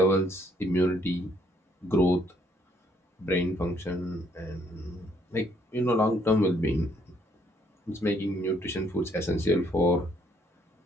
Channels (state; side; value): normal; both; correlation 0.67